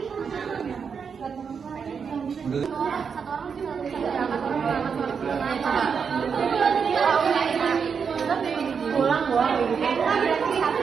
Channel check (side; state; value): left; quieter; 6.2 dB